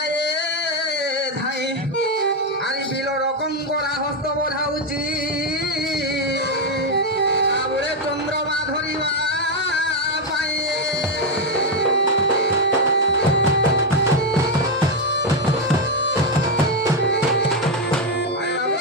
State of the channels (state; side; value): normal; both; correlation 0.04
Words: ধাই আরে বিল রকম করা হস্ত বোঝাউছি আবুরে চন্দ্রমা ধরিবা পায়ে